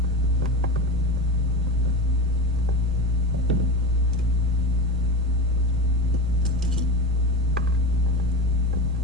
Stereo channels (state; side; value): normal; both; correlation 0.25